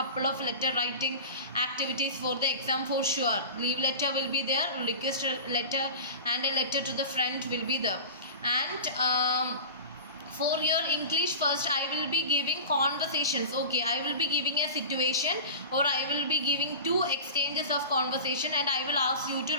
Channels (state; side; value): inverted; both; correlation -0.33